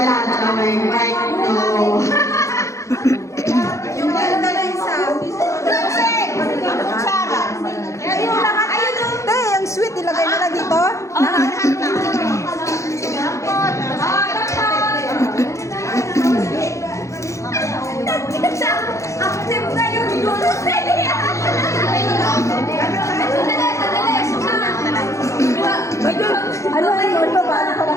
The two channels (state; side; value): late; right; 0.15 ms